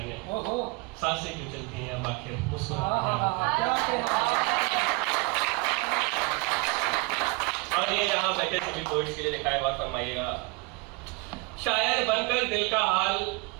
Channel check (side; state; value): left; quieter; 27.4 dB